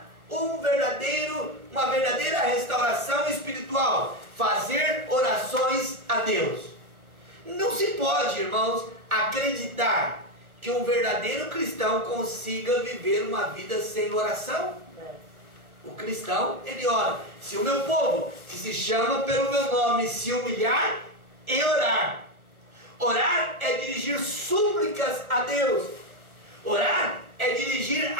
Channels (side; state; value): left; late; 1.3 ms